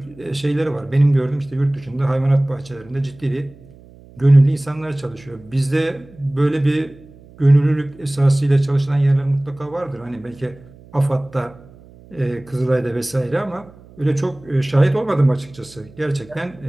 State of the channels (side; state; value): right; noise; hum, 23 dB below the sound